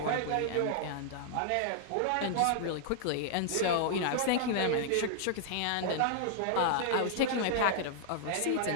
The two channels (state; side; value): different; both; correlation -0.01